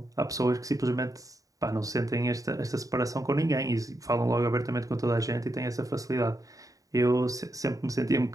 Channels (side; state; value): left; late; 0.16 ms